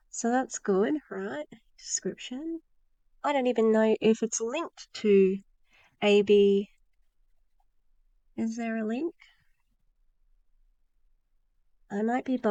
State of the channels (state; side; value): identical; both; correlation 1.00